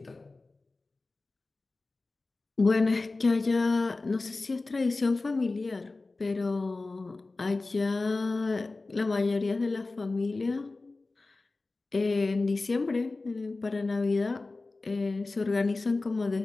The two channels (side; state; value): right; quieter; 3.4 dB